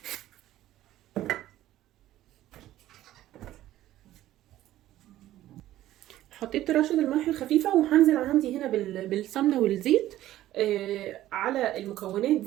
حطيت رشه الملح الخفيفه، وهنزل عندي هنا بالسمنه والزيت على المكونات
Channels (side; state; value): left; quieter; 14.1 dB